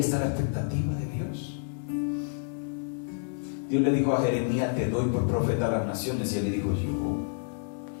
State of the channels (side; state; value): right; silent; digital silence